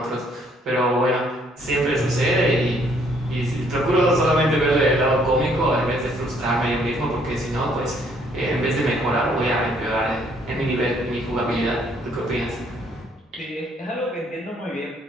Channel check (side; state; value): both; normal; correlation 0.66